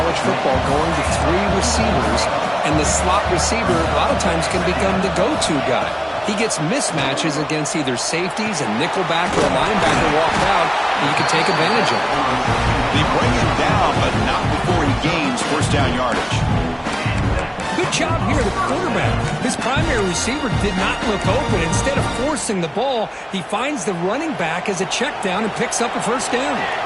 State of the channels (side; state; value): both; identical; correlation 1.00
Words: football going to 3 receivers, and the slot receiver a lot of times can become the go-to guy. He gets mismatches against either safeties, a nickelback, or a linebacker walked out, and you can take advantage of it. They bring him down, but not before he gains first down yardage. Good job here, the quarterback. His primary receiver did not look open. Instead of forcing the ball, he finds the running back as a check down and picks up a first down.